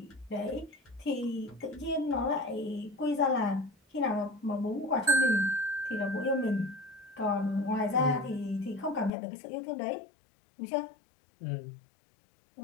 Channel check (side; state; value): right; drops out; at 9.1 s